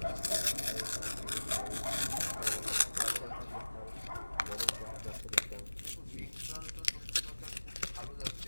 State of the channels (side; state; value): both; inverted; correlation -1.00